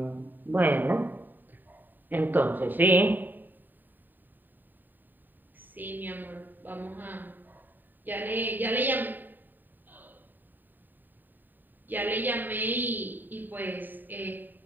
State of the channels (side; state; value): left; late; 0.090 ms